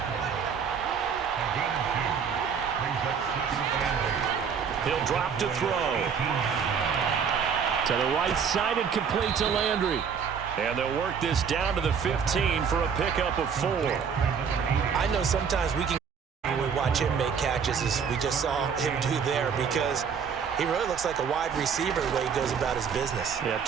He'll drop to throw. To the right side and complete to Landry. And they'll work this down to the 15 for a pickup of 4. I know sometimes we can when we watch him make catches as we just saw him do there because he really looks like a wide receiver the way he goes about his business. Yeah,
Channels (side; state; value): left; quieter; 6.8 dB